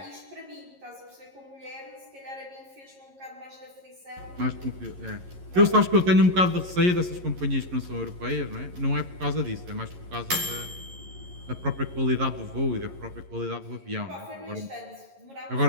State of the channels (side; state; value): left; late; 11 ms